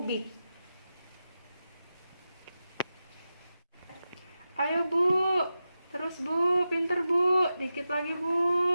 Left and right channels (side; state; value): both; inverted; correlation -0.91